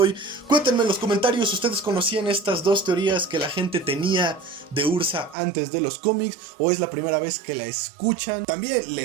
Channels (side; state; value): left; drops out; at 5.4 s